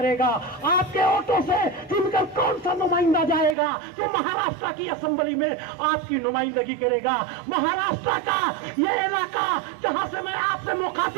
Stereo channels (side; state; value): left; drops out; at 3.6 s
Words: आपके वोटों से चुनकर कौन सा नुमाइंदा जाएगा जो महाराष्ट्र की असेंबली में आपकी नुमाइंदगी करेगा। महाराष्ट्र का ये इलाका जहां से मैं आपसे